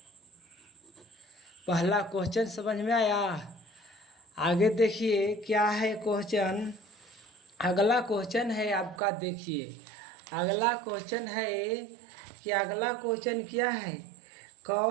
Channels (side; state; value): left; drops out; at 9.0 s